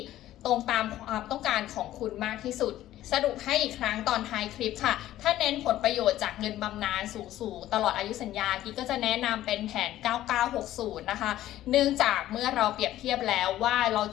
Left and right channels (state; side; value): quieter; right; 13.8 dB